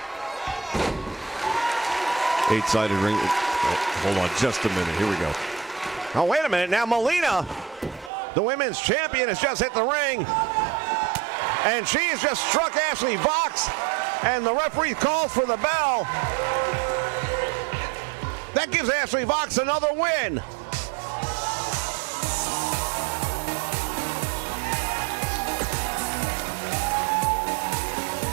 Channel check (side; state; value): left; drops out; at 8.1 s